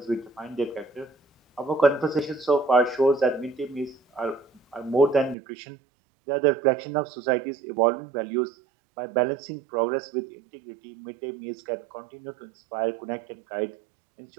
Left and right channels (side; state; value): left; drops out; at 5.4 s